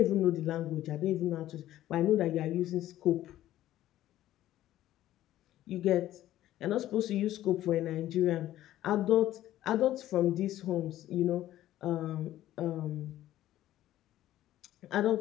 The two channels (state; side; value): quieter; right; 13.7 dB